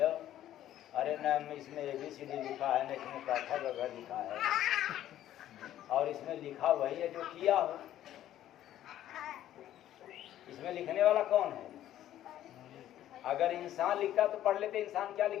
अरे न इसमें ABCD लिखा है, न इसमें काठा वगैरह लिखा है, और इसमें लिखा वही है जो किया हो। इसमें लिखने वाला कौन है? अगर इंसान लिखता तो पढ़ लेते। इंसान क्या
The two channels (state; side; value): quieter; right; 12.4 dB